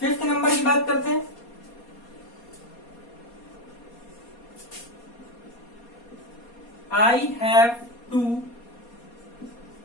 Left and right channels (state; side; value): late; right; 4.2 ms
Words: नंबर की बात करते हैं। I have to